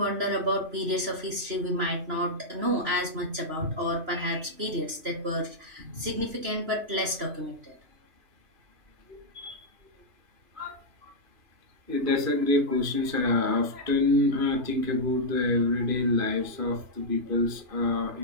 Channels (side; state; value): left; late; 3.0 ms